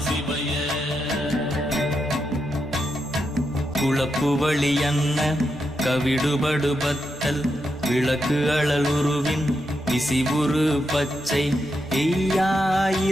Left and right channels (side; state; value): both; normal; correlation 0.84